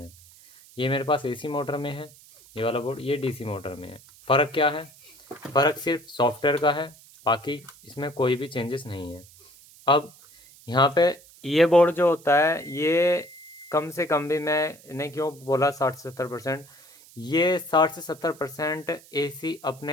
ये मेरे पास एसी मोटर में है, ये वाला बोर्ड ये डीसी मोटर में है। फ़र्क क्या है? फ़र्क सिर्फ सॉफ्टवेयर का है, बाकी इसमें कोई भी चेंजेस नहीं है। अब यहाँ पे ये बोर्ड जो होता है ये कम से कम भी, मैंने क्यों बोला 60 से 70%, ये 60 से 70% एसी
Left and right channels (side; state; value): right; noise; hiss, 24 dB below the sound